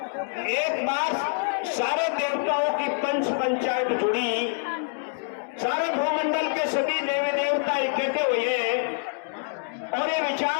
एक बार सारे देवताओं की पंच पंचायत जुड़ी, सारे भूमंडल के सभी देवी देवता इकट्ठे हुए और ये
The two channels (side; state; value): right; silent; 61 dB below the other